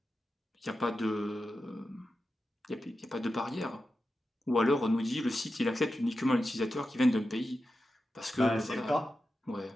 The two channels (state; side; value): normal; both; correlation 0.91